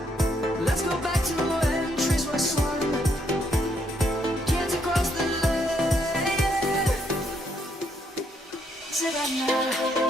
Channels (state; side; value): normal; both; correlation 0.73